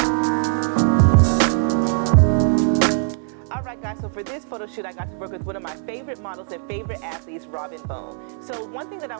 Alright guys, so for this photo shoot I got to work with one of my favorite models and favorite athletes, Robin Bone. So one thing that I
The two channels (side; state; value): left; silent; 64 dB below the other